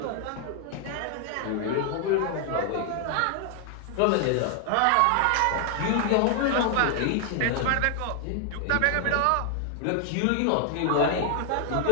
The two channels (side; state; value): both; different; correlation 0.00